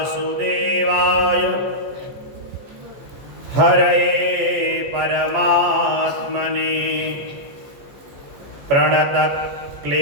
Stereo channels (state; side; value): late; left; 14 ms